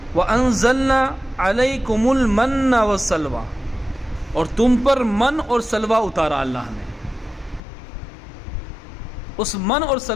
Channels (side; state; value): right; drops out; at 7.6 s